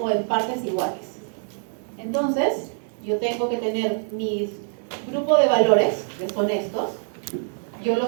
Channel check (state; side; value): silent; left; 61 dB below the other